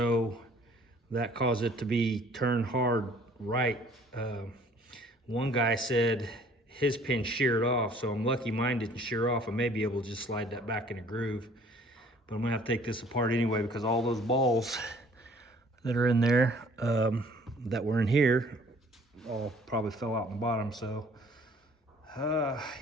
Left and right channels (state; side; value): normal; both; correlation 0.55